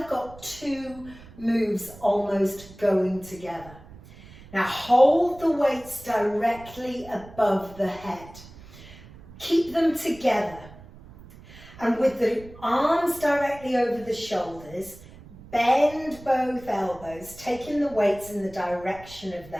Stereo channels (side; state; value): right; noise; rumble, 19 dB below the sound